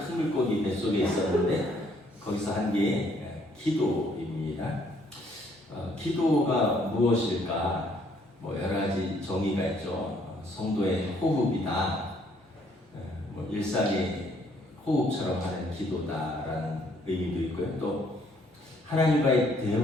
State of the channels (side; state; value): both; normal; correlation 0.66